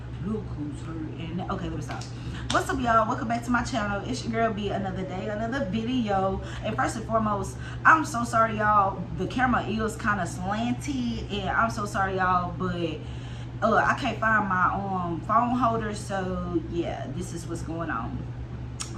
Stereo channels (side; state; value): both; identical; correlation 1.00